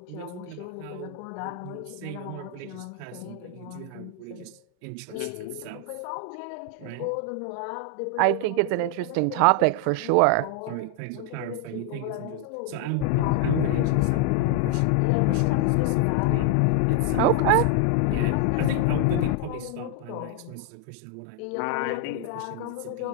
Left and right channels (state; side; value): different; both; correlation 0.00